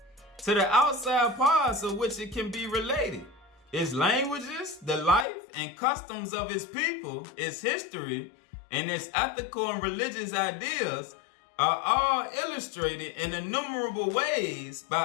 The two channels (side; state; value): right; drops out; at 5.2 s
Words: to the outside parts of which it can be related. Its languages, the life and customs of its people, its history, and its ethical and religious ideas are all illustrated in innumerable ways by